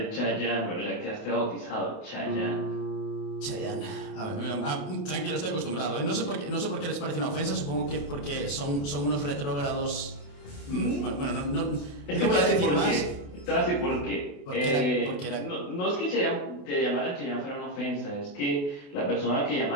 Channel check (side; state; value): right; late; 28 ms